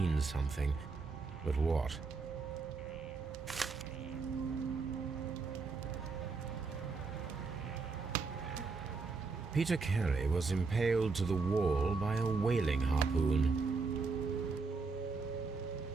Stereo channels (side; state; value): left; quieter; 4.4 dB